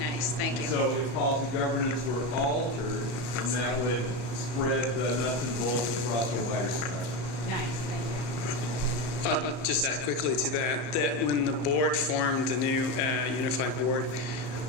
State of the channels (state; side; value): late; right; 34 ms